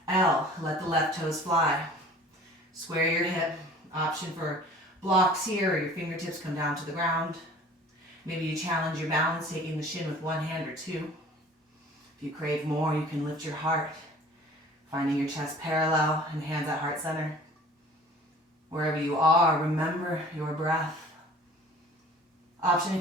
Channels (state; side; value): normal; both; correlation 0.47